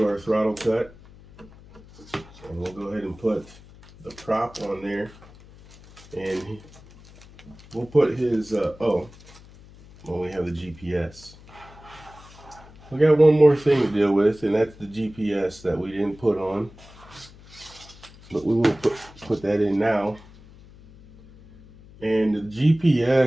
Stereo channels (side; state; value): left; noise; hum, 22 dB below the sound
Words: our throttle cut. And we'll go ahead and put the prop on there. And we'll put his, we have the GPS. We got one more thing to deal with, and that's the GPS that we didn't put on. But we will put that in now. And the